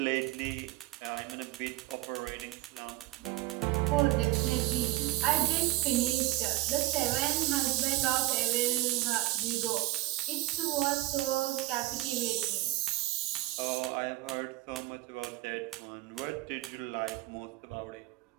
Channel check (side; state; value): left; quieter; 17.7 dB